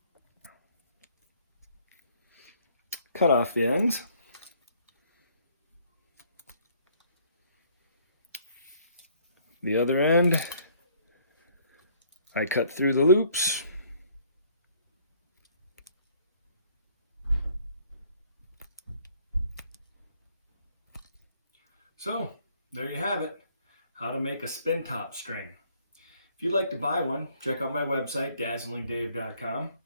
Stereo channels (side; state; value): both; inverted; correlation -0.62